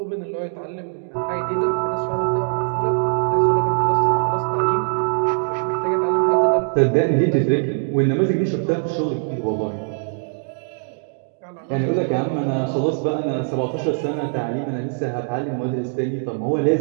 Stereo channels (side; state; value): left; silent; digital silence